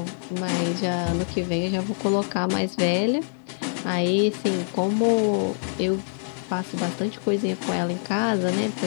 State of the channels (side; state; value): right; silent; digital silence